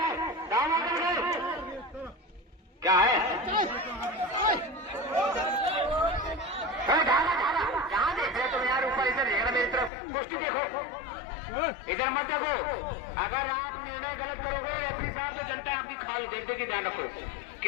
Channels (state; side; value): drops out; right; at 9.9 s